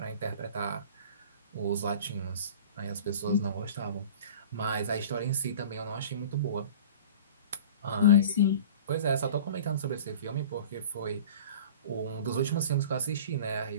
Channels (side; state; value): both; inverted; correlation -0.40